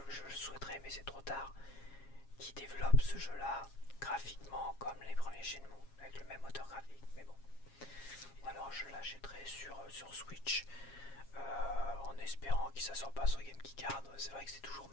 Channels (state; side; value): late; right; 7.3 ms